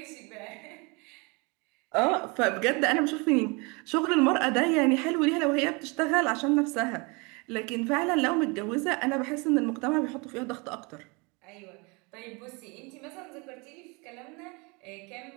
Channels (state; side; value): quieter; left; 29.1 dB